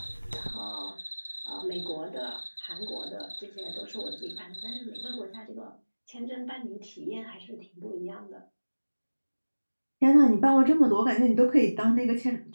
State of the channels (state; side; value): inverted; both; correlation -1.00